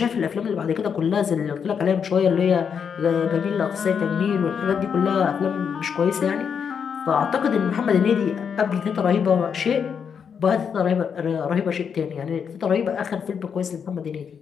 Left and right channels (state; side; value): quieter; right; 6.9 dB